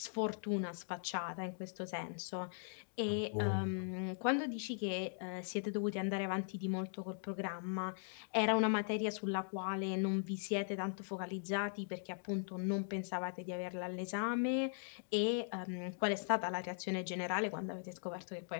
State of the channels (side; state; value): right; silent; digital silence